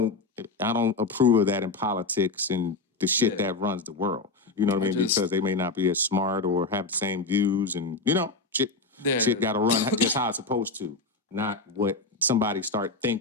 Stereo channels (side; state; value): right; quieter; 3.6 dB